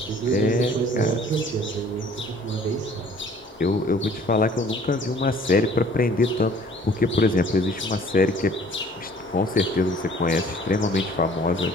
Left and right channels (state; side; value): normal; both; correlation 0.53